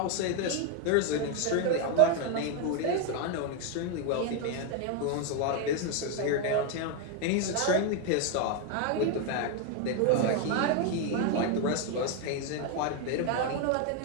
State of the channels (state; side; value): different; both; correlation 0.01